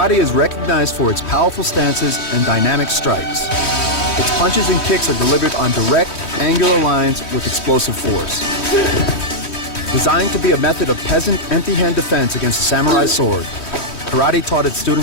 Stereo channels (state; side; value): late; right; 3.1 ms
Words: is recognized for its powerful stances and dynamic strikes. Its punches and kicks are delivered on direct, angular lines with explosive force. Designed to be a method of peasant empty-hand defense against a samurai sword, karate taught its